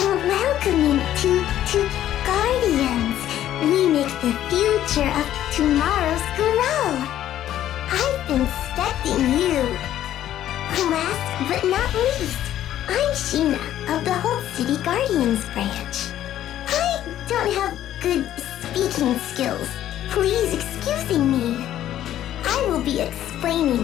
Welcoming to Guardians. We make the future of tomorrow's grow. I've been expecting you. Last but not least, I'm Sheena of the Whole City Guardians branch. I don't have good speaking skills. Please excuse me. I will be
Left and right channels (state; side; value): quieter; right; 12.1 dB